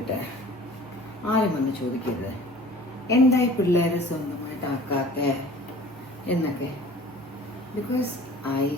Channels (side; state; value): both; normal; correlation 0.46